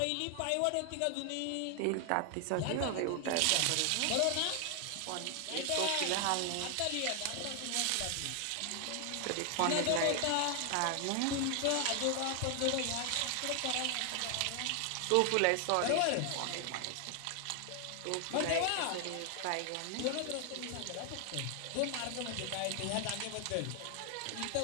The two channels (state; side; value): different; both; correlation 0.00